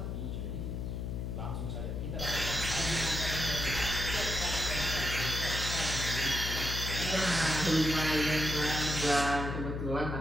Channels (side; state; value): left; noise; hum, 3 dB below the sound